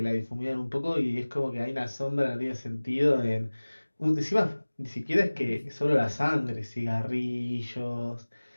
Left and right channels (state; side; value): inverted; both; correlation -1.00